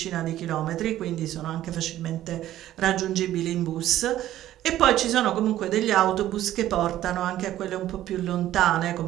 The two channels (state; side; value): quieter; left; 13.4 dB